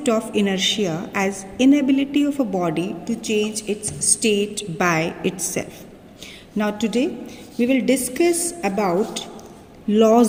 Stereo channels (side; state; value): both; identical; correlation 1.00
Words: of inertia as inability of a body to change its state by itself. Now today we will discuss about